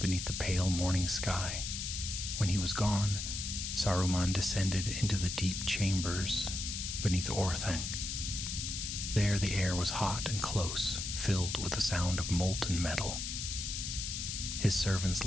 the pale morning sky. When he was gone, Saruman descended into the deep chambers beneath Orthanc. There the air was hot and close, filled with the sound of molten metal. His servants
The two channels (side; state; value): left; noise; hiss, 4 dB below the sound